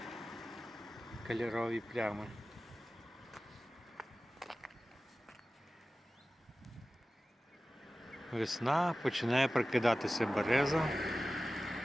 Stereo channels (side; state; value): both; normal; correlation 0.96